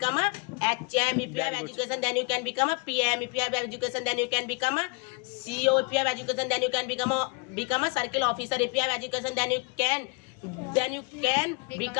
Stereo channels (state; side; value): quieter; right; 31.2 dB